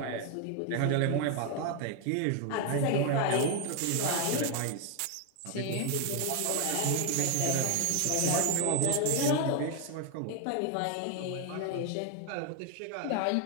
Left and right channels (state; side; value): different; both; correlation 0.01